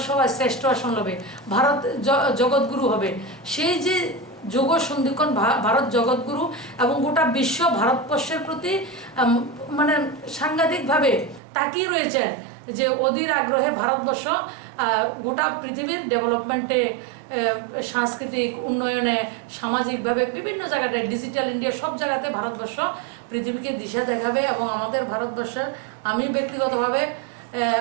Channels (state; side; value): drops out; left; at 11.4 s